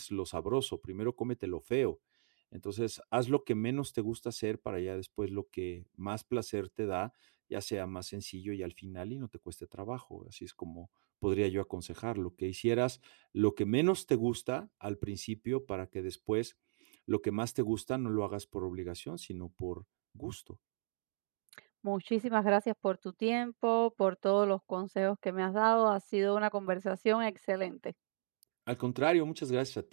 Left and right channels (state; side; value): silent; left; digital silence